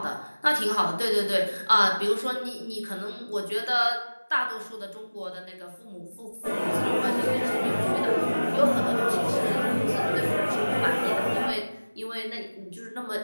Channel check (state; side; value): inverted; both; correlation -1.00